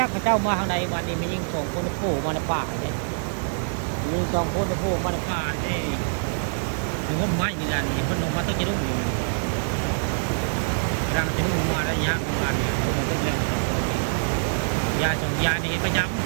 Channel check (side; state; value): left; silent; 62 dB below the other